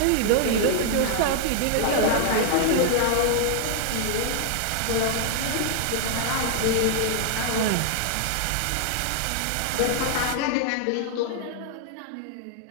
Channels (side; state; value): both; different; correlation -0.01